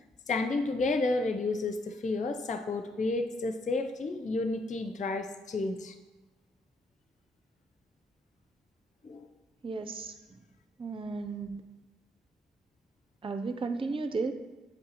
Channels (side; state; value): both; normal; correlation 0.72